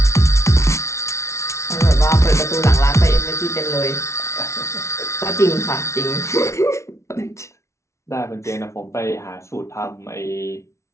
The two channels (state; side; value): late; right; 0.13 ms